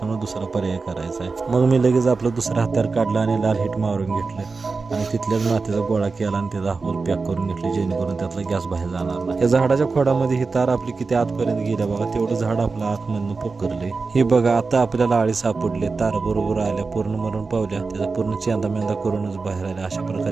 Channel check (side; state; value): left; quieter; 4.3 dB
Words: दुसरा पर्याय करायचा आहे. मग मी लगेच आपलं दुसरं हत्यार काढलं आणि लाल हिट मारून घेतलं आणि तिथल्याच मातीचा गोळा केला आणि त्याचा होल पॅक करून घेतले, जेणेकरून त्यातला गॅस बाहेर जाणार नाही. या झाडाच्या खोडामध्ये ही तार आपली किती आतपर्यंत गेल्या बघा, तेवढं झाड आपलं आतमधून पोकरले. हे बघा आता आपल्याला आळी सापडले, तार बरोबर आल्या, पूर्ण मरून पावल्या, त्याचा पूर्ण चेंदा मेंदा करूनच बाहेर आल्या. अशा